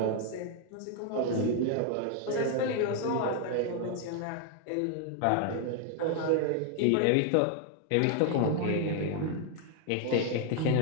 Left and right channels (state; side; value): different; both; correlation 0.00